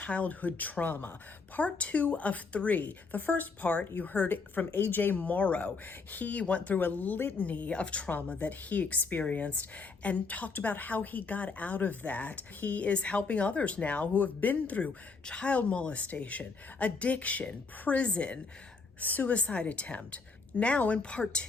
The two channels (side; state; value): right; quieter; 4.4 dB